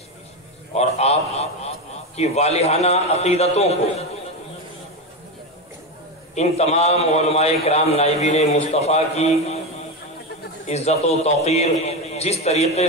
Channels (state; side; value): normal; both; correlation 0.15